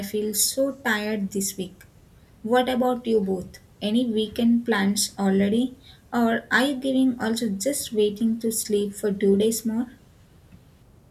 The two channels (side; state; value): both; identical; correlation 1.00